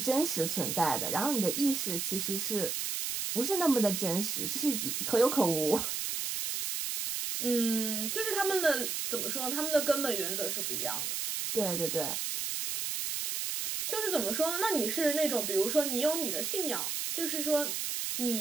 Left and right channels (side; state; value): right; noise; hiss, 2 dB below the sound